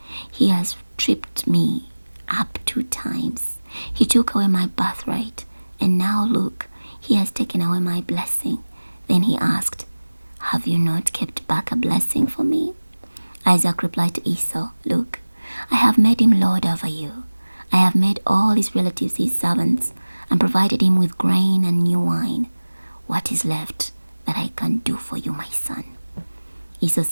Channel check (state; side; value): inverted; both; correlation -1.00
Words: He has tripped me up 2 times. He took away my birthright, and now look, he has taken away my blessing." Then he asked, "Have you not kept back a blessing for me?" Isaac replied to Esau, "Look, I have made him lord over you. I have made all his relatives his servants and provided him with grain and new wine. What is left that I can do for you, my son?" Esau